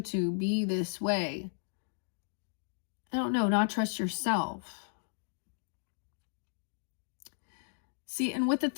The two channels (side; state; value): right; silent; digital silence